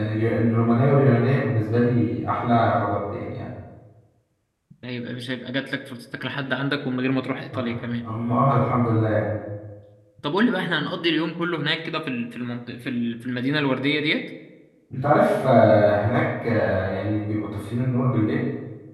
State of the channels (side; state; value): both; identical; correlation 1.00